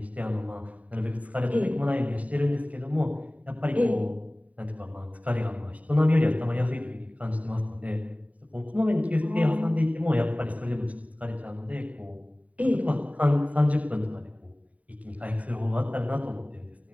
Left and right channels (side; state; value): left; late; 0.069 ms